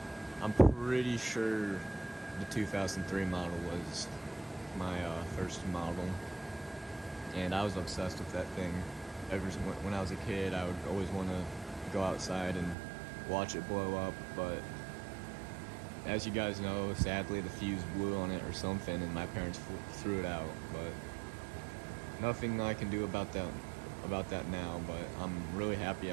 I'm pretty sure the 2003 model was my first model, and I was obsessed with that thing. When I was a kid, I would always want to go outside and watch it blow up, but as you guys know, sadly the fuse blew on it or something, and my parents threw it out. But nothing I can do about that now, but I'm really happy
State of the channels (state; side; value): drops out; left; at 12.8 s